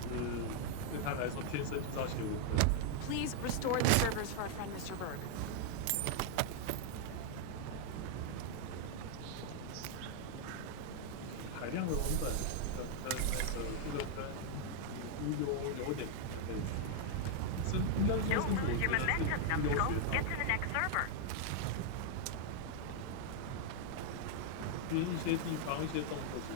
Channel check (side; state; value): both; different; correlation 0.00